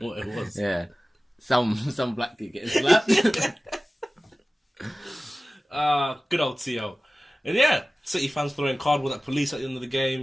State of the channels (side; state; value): both; normal; correlation 0.96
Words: what it was. Yeah, some black kid getting slapped. Good old T.O. And yeah, City fans throwing cardboard at police at the end of the